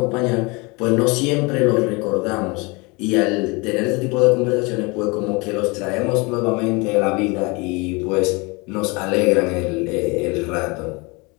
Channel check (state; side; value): quieter; right; 27.4 dB